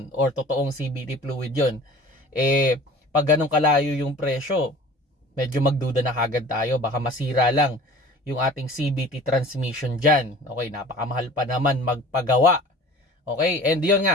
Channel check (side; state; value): both; normal; correlation 0.44